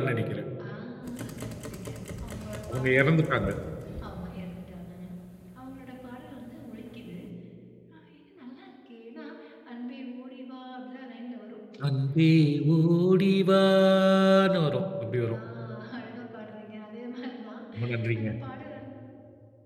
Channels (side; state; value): both; identical; correlation 1.00